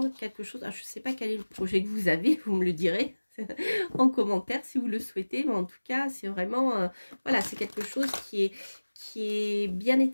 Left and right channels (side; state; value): both; inverted; correlation -1.00